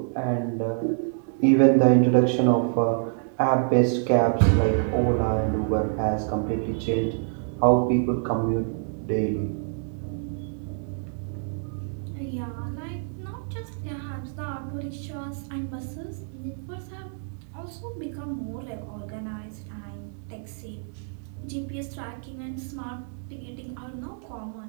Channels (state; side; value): silent; left; digital silence